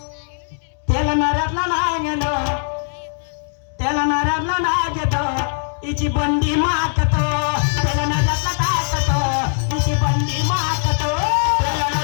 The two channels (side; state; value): right; silent; digital silence